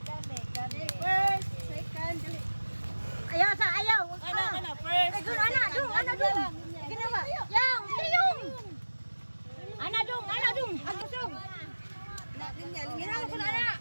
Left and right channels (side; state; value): both; inverted; correlation -1.00